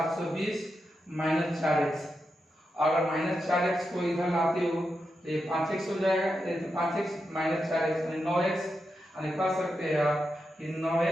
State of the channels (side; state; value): both; normal; correlation 0.87